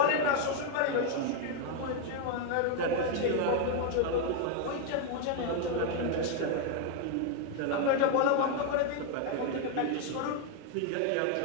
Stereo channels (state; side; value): different; both; correlation 0.01